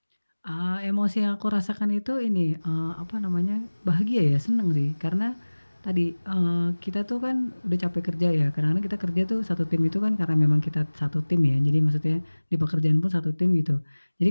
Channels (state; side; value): inverted; both; correlation -1.00